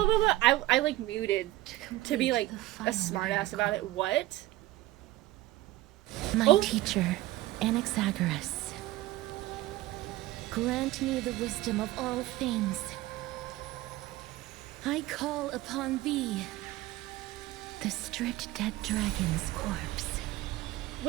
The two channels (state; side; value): quieter; left; 16.6 dB